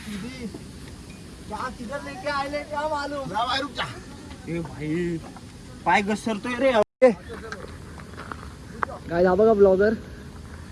किधर लेके आए क्या मालूम. रुक जा. ए भाई पाय घसरतोय रे. काय हा बघा ब्लॉगर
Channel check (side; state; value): both; identical; correlation 1.00